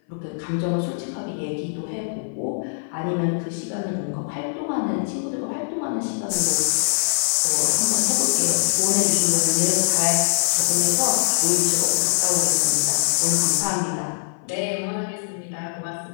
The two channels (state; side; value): silent; right; 57 dB below the other